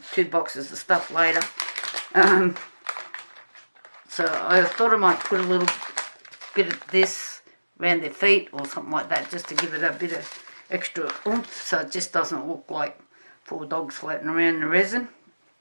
2 boxes of stuff later. So I thought I might put a little bit of this around their feet or something like that, just to give it a bit of extra oomph, so it just doesn't look like 4 dogs floating around in the resin.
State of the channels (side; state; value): both; inverted; correlation -1.00